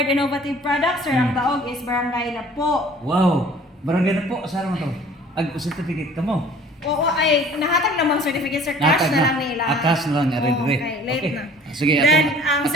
innovative products sir ang taog is Barangay Napo. Wow. Barangay Napo asa man to? Ag certificate kamo. Oo ay nahatag namang certificate sir cash na lang nila. Cash na lang ari. Okay, late na. Sige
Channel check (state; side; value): normal; both; correlation 0.51